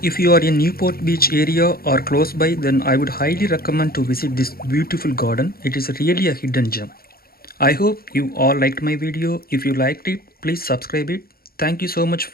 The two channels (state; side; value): late; right; 0.44 ms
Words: if you are in Newport Beach area or close by, then I would highly recommend to visit this beautiful garden. It is really a hidden gem. I hope you all liked my video. If you liked it, please subscribe it. Thank you so much